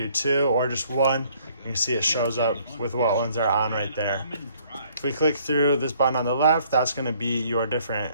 2 or just 1. You can see it shows up with what ones are on right there. If we click through this button on the left, that's going to be your different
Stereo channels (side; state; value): both; inverted; correlation -0.62